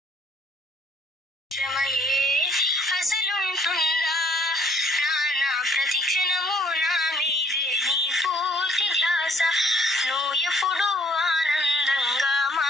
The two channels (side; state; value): both; normal; correlation 0.61